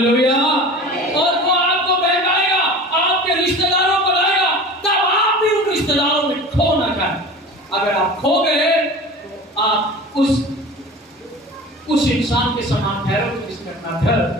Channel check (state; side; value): normal; both; correlation 0.37